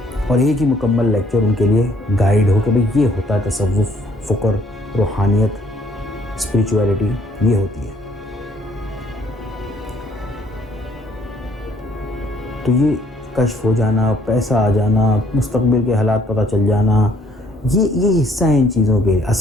اور ایک ہی مکمل لیکچر ان کے لیے گائیڈ ہو کہ بھئی یہ ہوتا ہے تصوف، فکر، روحانیت، اسپریچویلٹی، یہ ہوتی ہے۔ تو یہ کشف ہو جانا، پیسہ آ جانا، مستقبل کے حالات پتہ چل جانا، یہ حصہ ہیں ان چیزوں کے۔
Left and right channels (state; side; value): normal; both; correlation 0.64